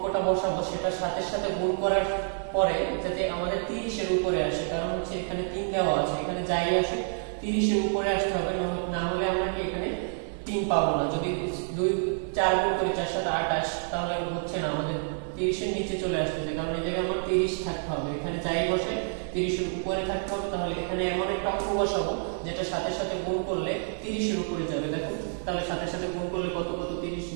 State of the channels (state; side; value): silent; left; 59 dB below the other